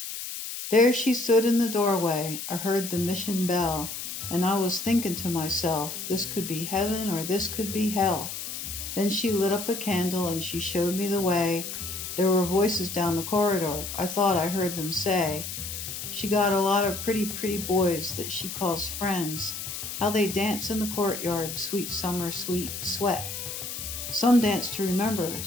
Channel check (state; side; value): noise; left; hiss, 7 dB below the sound